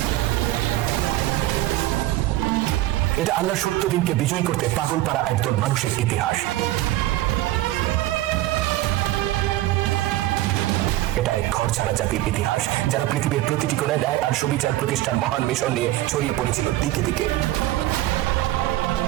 এটা আল্লাহর সত্য দিনকে বিজয় করতে পাগল পাড়া একদল মানুষের ইতিহাস। এটা এক ঘর ছাড়া জাতির ইতিহাস, যারা পৃথিবীর প্রতিটি কোণায় ন্যায় আর সুবিচার প্রতিষ্ঠার মহান মিশন নিয়ে ছড়িয়ে পড়েছিল দিকে দিকে,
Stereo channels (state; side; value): quieter; left; 16.0 dB